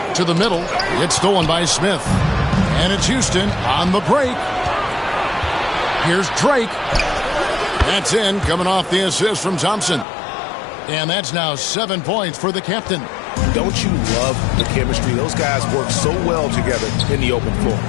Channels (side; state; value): right; drops out; at 10.1 s